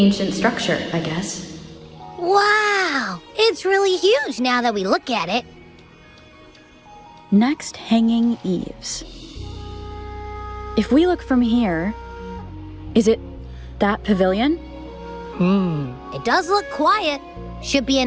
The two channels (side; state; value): both; identical; correlation 1.00